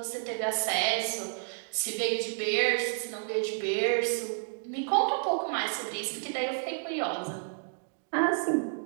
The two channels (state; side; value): silent; left; digital silence